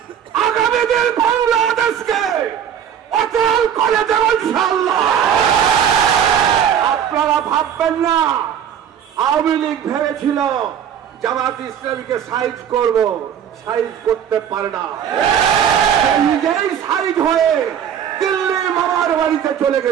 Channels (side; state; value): left; quieter; 8.9 dB